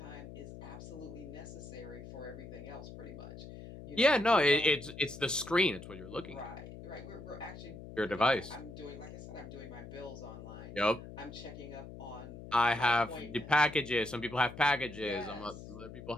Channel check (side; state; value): left; noise; hum, 13 dB below the sound